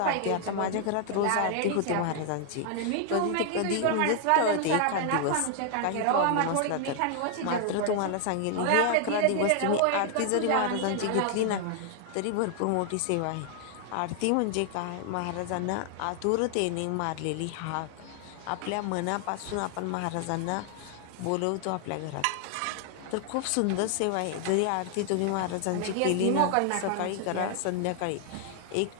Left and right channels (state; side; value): different; both; correlation 0.00